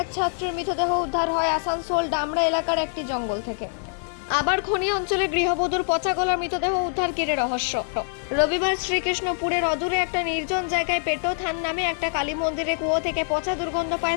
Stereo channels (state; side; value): silent; right; 55 dB below the other